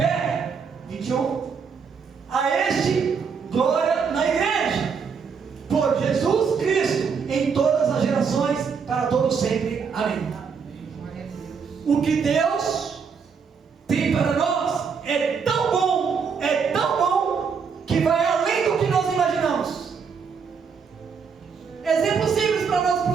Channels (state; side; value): quieter; left; 6.0 dB